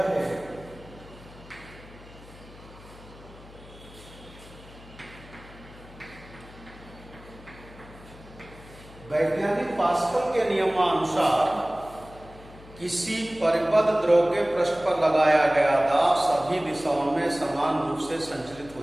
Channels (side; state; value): left; noise; hum, 20 dB below the sound